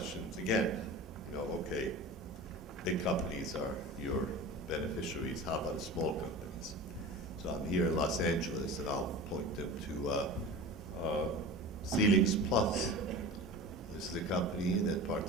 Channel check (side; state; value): both; normal; correlation 0.34